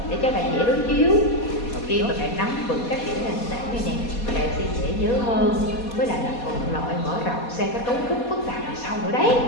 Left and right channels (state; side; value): late; right; 4.2 ms